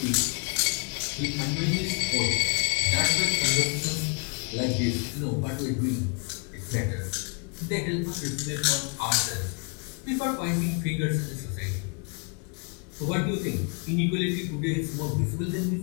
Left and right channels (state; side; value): quieter; right; 33.4 dB